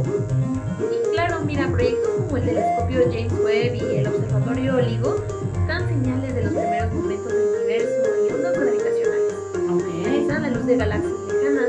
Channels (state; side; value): identical; both; correlation 1.00